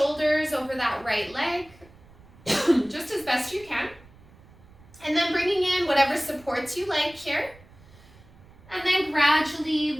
over that right leg, just as best you can, and then bringing in whatever supports you like here. And then gradually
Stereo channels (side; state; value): right; noise; rumble, 25 dB below the sound